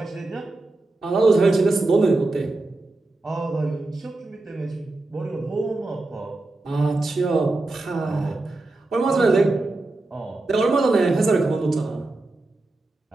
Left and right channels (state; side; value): quieter; left; 3.0 dB